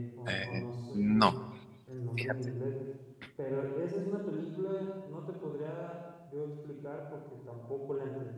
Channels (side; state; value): both; identical; correlation 1.00